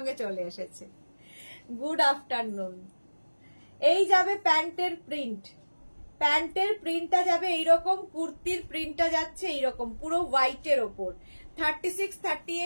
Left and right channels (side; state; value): both; inverted; correlation -1.00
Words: চলে এসেছে। Good afternoon. এই যাবে প্যান্টের প্রিন্ট, প্যান্টের প্রিন্টটা যাবে এইরকম, কুর্তির প্রিন্টটা যাচ্ছে এইরকম পুরো হোয়াইটের ওপর। 36,